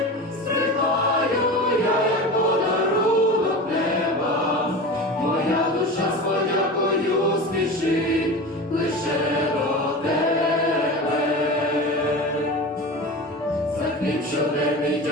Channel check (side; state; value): both; normal; correlation 0.30